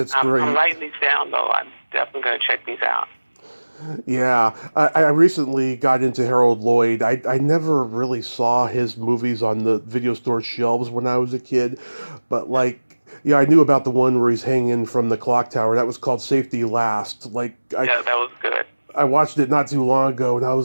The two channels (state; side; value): inverted; both; correlation -1.00